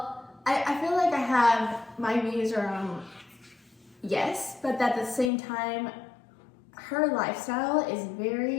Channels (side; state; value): right; drops out; at 5.3 s